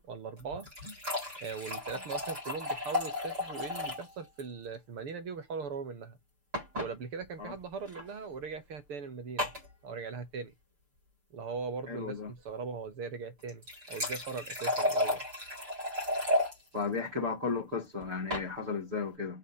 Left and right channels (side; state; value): left; late; 6.8 ms